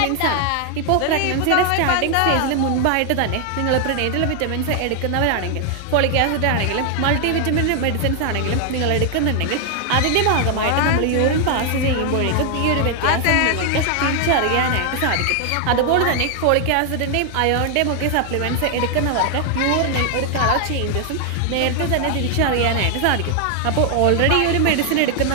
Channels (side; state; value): both; different; correlation 0.00